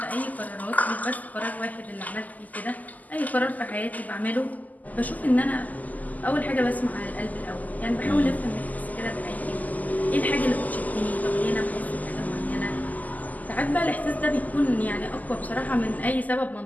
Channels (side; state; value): right; late; 0.079 ms